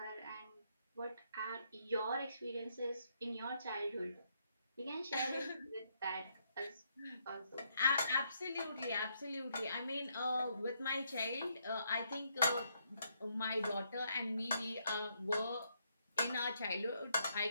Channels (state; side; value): inverted; both; correlation -0.75